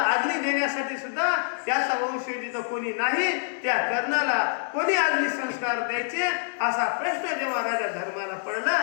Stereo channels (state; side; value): silent; right; digital silence